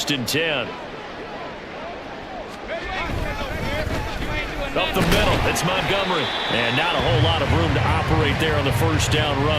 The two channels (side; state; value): both; identical; correlation 1.00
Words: and 10. Up the middle, it's Montgomery. And not a whole lot of room to operate there on the 1st down